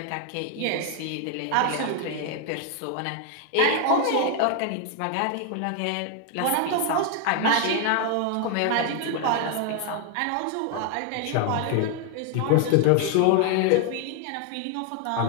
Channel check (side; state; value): both; different; correlation 0.00